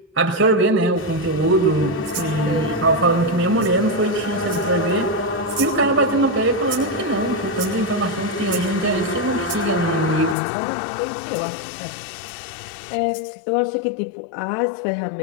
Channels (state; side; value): drops out; right; at 10.4 s